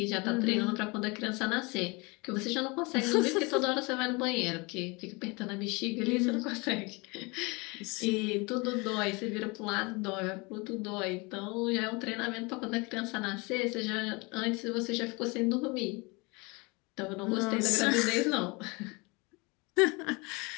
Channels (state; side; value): quieter; right; 27.3 dB